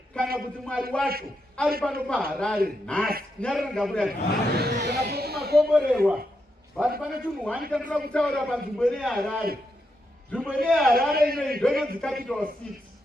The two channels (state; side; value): normal; both; correlation 0.83